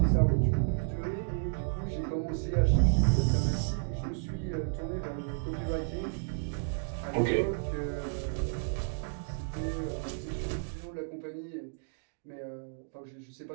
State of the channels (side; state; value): left; silent; digital silence